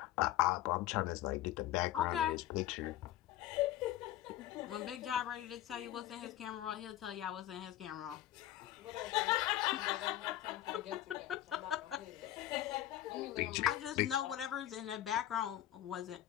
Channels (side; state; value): right; quieter; 13.5 dB